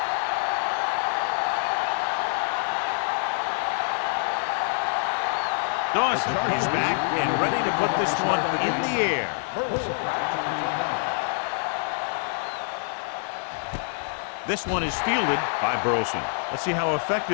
Dawson is back and ready to put this one in the air. This one is fielded by Burleson. Let's see how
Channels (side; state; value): right; silent; digital silence